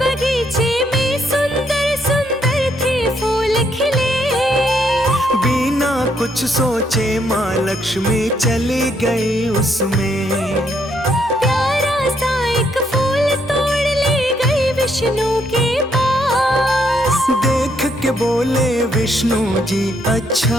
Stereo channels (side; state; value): both; normal; correlation 0.73